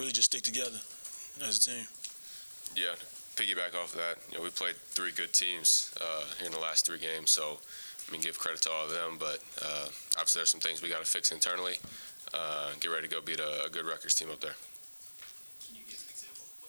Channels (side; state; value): both; inverted; correlation -1.00